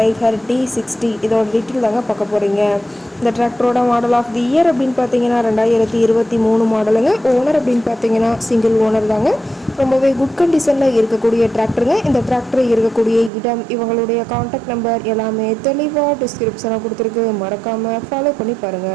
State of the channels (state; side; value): drops out; left; at 13.3 s